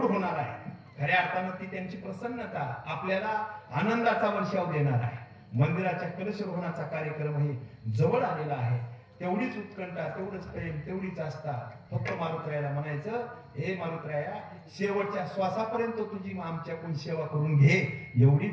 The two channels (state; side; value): identical; both; correlation 1.00